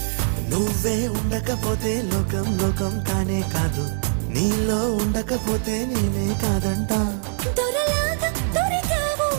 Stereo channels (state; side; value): silent; left; 61 dB below the other